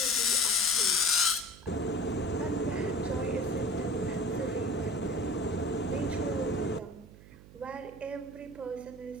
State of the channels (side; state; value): right; noise; hum, 20 dB below the sound